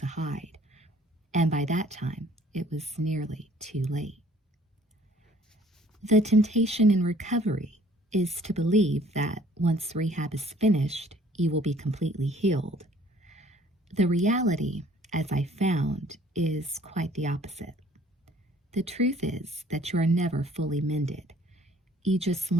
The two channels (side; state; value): both; normal; correlation 0.56